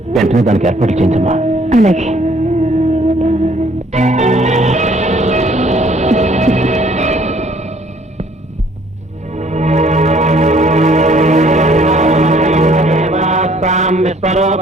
వెంటనే దానికి ఏర్పాట్లు చేయించమ్మా. అలాగే.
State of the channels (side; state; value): both; normal; correlation 0.60